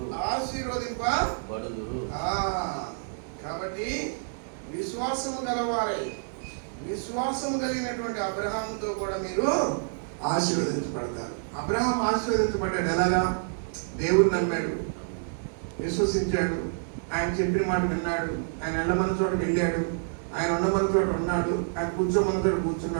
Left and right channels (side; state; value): left; silent; digital silence